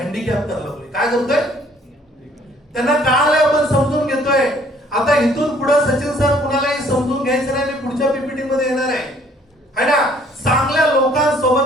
करायला लागलोय. काय करतोय त्यांना कळालंय, आपण समजून घेतोय. आता इथून पुढे सचिन सर कुणालाही समजून घ्यायचं नाही. मी पुढच्या पीपीटी मध्ये येणार आहे ना. चांगल्या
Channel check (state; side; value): normal; both; correlation 0.60